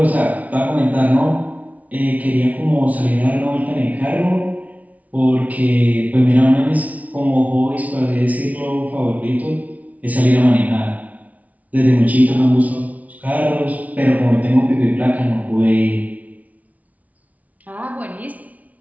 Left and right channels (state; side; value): late; left; 0.071 ms